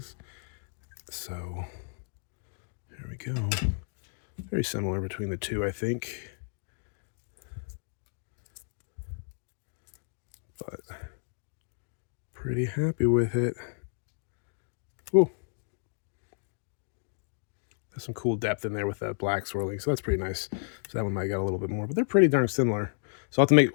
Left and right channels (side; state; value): right; silent; digital silence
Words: So there we go. Very similar between the two, I think. But pretty happy with it. Ooh. There's some cool depth in there with that black swirling, so that's pretty nice. So that one might get a little bit more, but they're pretty darn similar. So I'll have